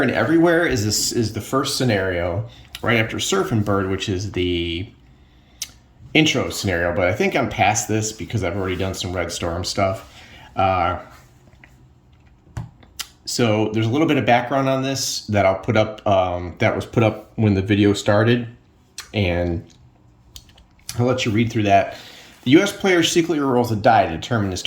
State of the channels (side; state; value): both; identical; correlation 1.00